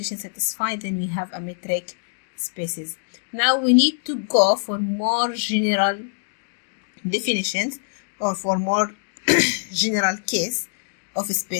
satisfy, then we have a metric spaces. Now we need to go for more general definitions, or for more general case of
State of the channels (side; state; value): right; silent; digital silence